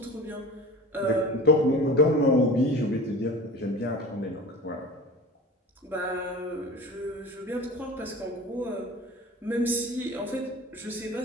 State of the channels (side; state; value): both; normal; correlation 0.37